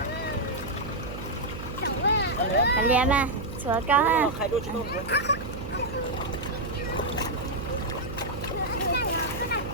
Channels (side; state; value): right; noise; hum, 9 dB below the sound